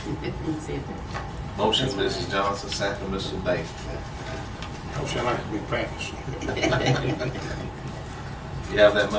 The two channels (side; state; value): both; identical; correlation 1.00